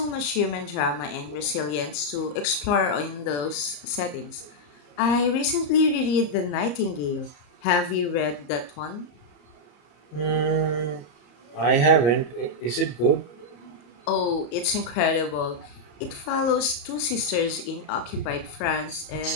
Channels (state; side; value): late; right; 34 ms